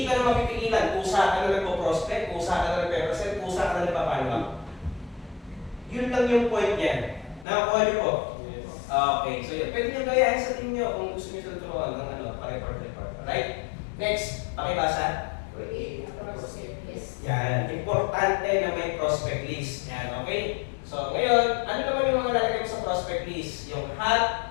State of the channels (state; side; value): drops out; right; at 7.5 s